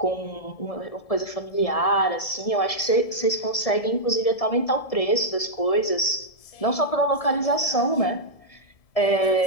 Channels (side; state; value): right; late; 1.7 ms